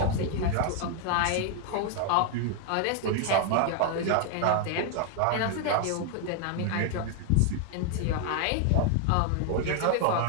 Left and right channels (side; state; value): both; different; correlation 0.00